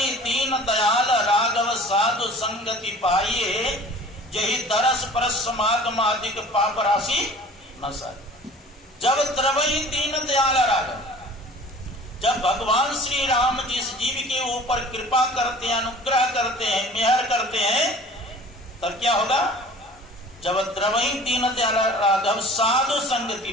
दीन दयाल राघव साधु संगति पाइए, यही दरस परस समागमादिक पाप राशि न सारी। जब द्रवई दीन दयाल राघव, जब भगवान श्री राम जिस जीव के ऊपर कृपा करते हैं, अनुग्रह करते हैं, मेहर करते हैं, तब क्या होगा? जब द्रवई दीन दयाल राघव साधु संगति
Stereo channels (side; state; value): both; normal; correlation 0.46